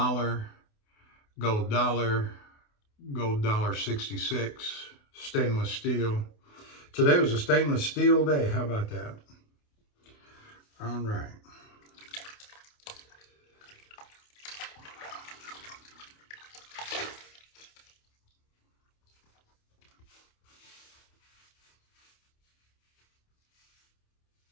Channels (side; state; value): right; late; 28 ms